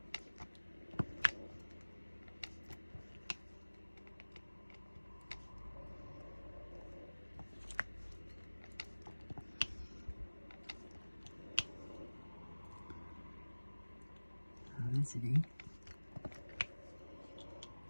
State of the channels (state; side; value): inverted; both; correlation -1.00